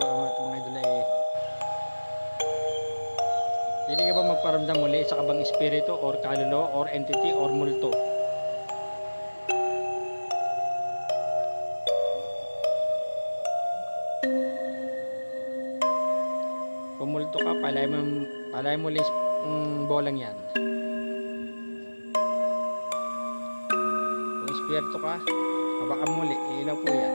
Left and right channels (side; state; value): both; inverted; correlation -1.00